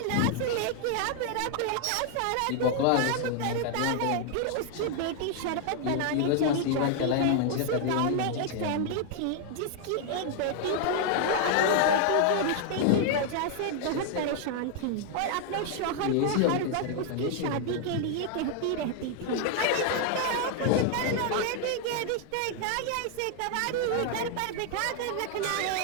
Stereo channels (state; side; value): different; both; correlation 0.00